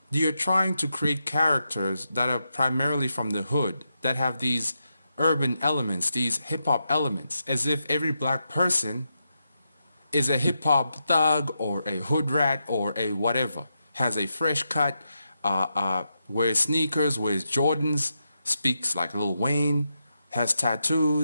you're trying to create characters that are primarily from the hood, that have these urban elements, these hip hop elements, as if every black person is a hip hop thug or a hood rat or a whatever, has a fresh cut, wears sneakers, wears Jordans, speaks like Lil Wayne, has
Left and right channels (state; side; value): inverted; both; correlation -0.86